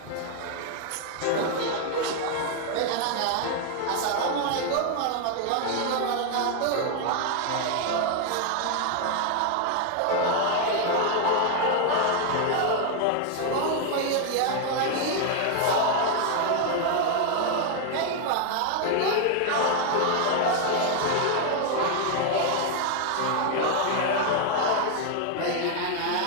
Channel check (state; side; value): different; both; correlation 0.00